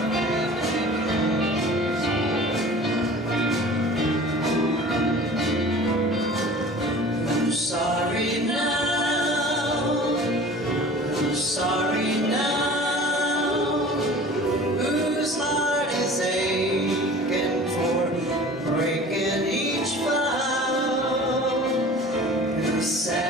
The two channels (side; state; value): both; normal; correlation 0.42